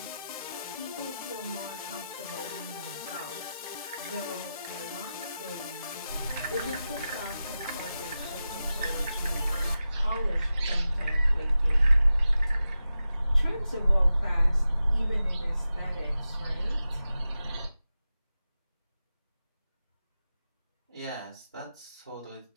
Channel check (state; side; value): inverted; both; correlation -0.92